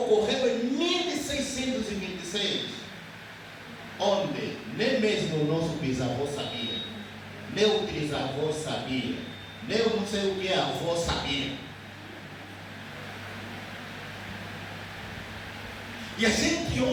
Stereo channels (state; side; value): identical; both; correlation 1.00